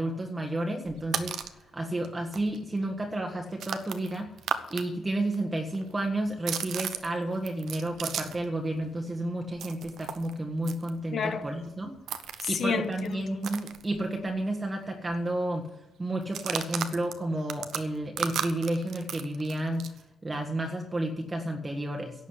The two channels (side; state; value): both; normal; correlation 0.85